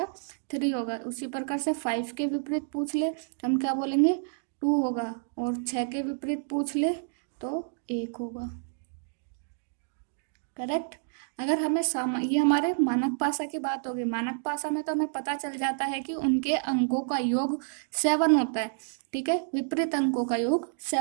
3 होगा। उसी प्रकार से 5 के विपरीत पूछ ले तो हम क्या बोलेंगे, 2 होगा। और 6 के विपरीत पूछ ले तो 1 होगा। करेक्ट। अगर हमें ये हमारे मानक पासा की बात होगी। मानक पासा में तो हमें पता चल जाता है कि उनके अंकों का योग 7 होता है। ठीक है, विपरीत अंकों का योग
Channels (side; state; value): left; silent; digital silence